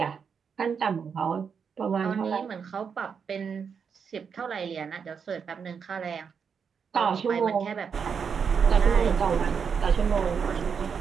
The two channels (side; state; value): left; quieter; 6.5 dB